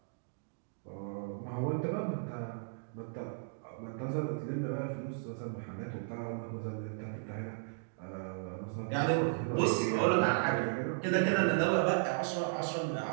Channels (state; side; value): silent; left; digital silence